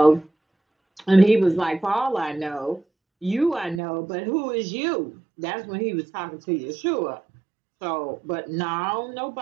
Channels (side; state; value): left; drops out; at 3.8 s